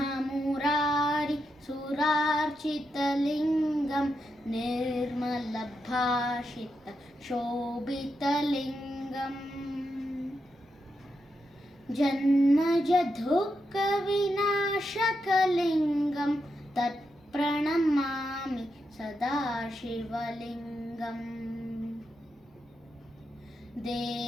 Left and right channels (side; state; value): both; normal; correlation 0.85